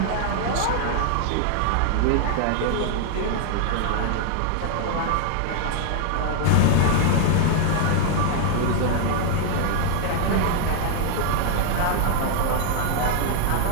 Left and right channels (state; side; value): different; both; correlation 0.00